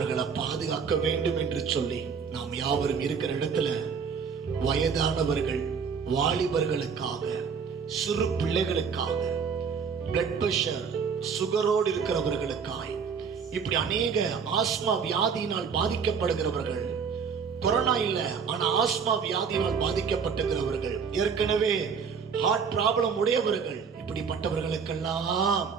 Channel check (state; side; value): quieter; left; 6.2 dB